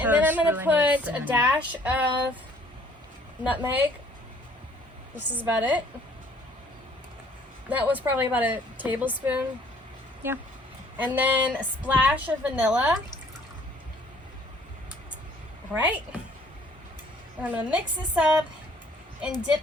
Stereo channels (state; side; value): normal; both; correlation 0.59